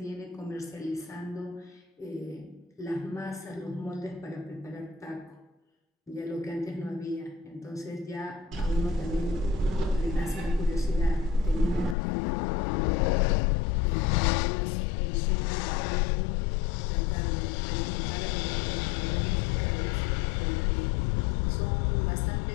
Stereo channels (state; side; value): drops out; right; at 12.0 s